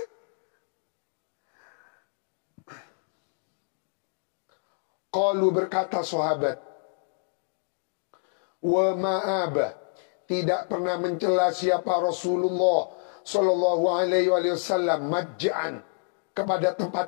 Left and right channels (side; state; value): right; silent; digital silence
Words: Qalu berkata sahabat, wa ma'aba, tidak pernah mencela siapa Rasulullah sallallahu alaihi wasallam majja'an kepada